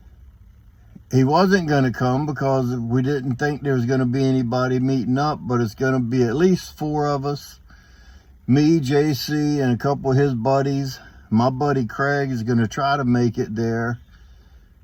he wasn't going to come because we didn't think there was going to be anybody meeting up, but it's going to be at least 4 of us. Me, JC, and a couple of his buddies. My buddy Craig is going to try to make it there.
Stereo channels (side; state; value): both; identical; correlation 1.00